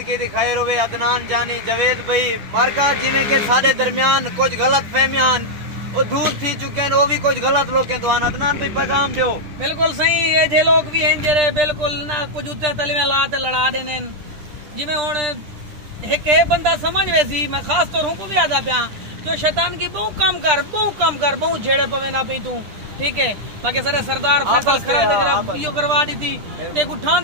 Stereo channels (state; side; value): late; left; 10 ms